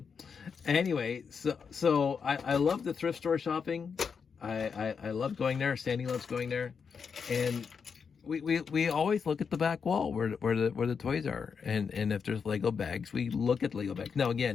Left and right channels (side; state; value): right; quieter; 6.1 dB